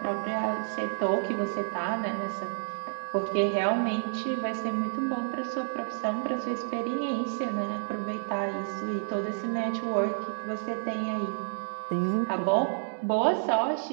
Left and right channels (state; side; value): silent; left; digital silence